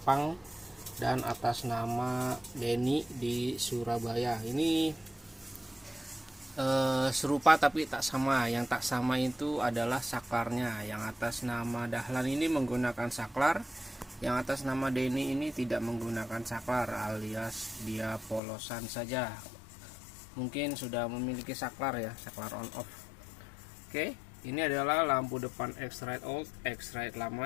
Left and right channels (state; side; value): drops out; right; at 18.4 s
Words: dan atas nama Denny di Surabaya. Ini serupa tapi tak sama. Yang tak sama itu adalah saklarnya. Yang atas nama Dahlan ini menggunakan saklar, yang atas nama Denny ini tidak menggunakan saklar, alias dia polosan saja. Mungkin sudah memiliki saklar ya, saklar on off. Oke, ini adalah lampu depan X-Rite old, X-Rite